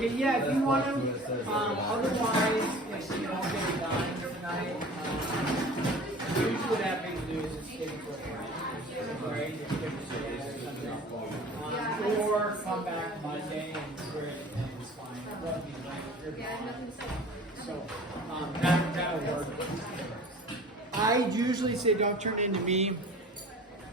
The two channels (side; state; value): both; normal; correlation 0.43